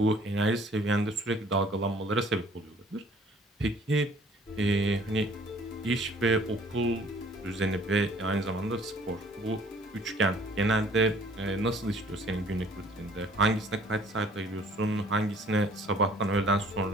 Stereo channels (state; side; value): normal; both; correlation 0.56